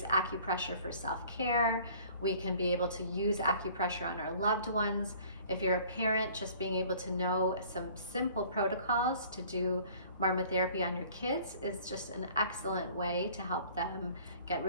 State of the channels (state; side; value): inverted; both; correlation -0.52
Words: acupressure for self-care. We can be able to use acupressure on our loved ones. If you're a parent, just being able to know some simple protocols to do Marma therapy on your kids is just an excellent way to help them get